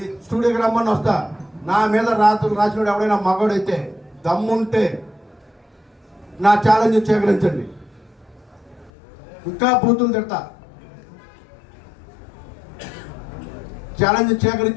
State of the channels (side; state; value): right; drops out; at 8.9 s